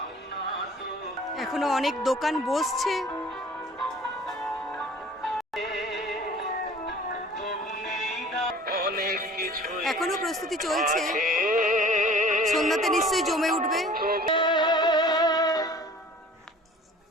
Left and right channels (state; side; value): normal; both; correlation 0.47